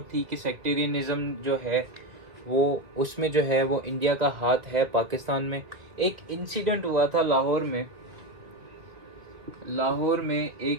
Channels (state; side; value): late; left; 2.2 ms